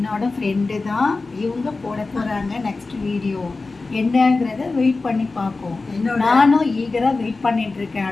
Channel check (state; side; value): quieter; right; 3.7 dB